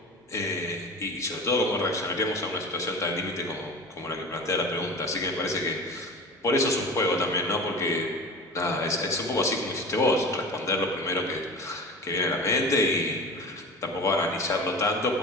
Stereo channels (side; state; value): both; normal; correlation 0.34